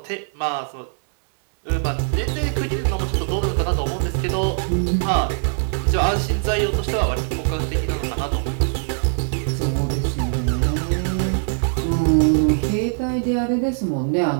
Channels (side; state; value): left; silent; digital silence